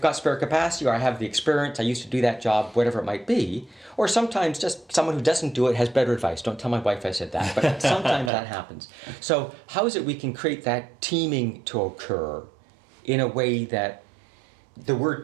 got spare capacity, or I have the experience, I used to do that job, whatever it might be. Or sometimes just someone who doesn't do it has better advice. Don't tell my wife I said that, but sometimes that happens. So how is it we can create that teaming to occur in a way that the word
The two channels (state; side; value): drops out; left; at 8.3 s